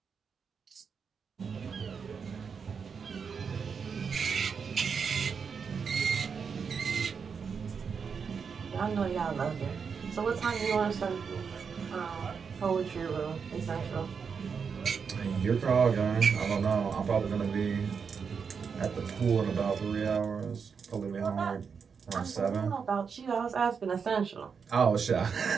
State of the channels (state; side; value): quieter; left; 6.1 dB